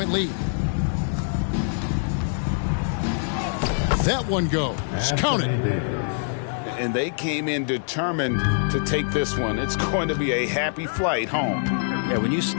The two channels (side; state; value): right; silent; 62 dB below the other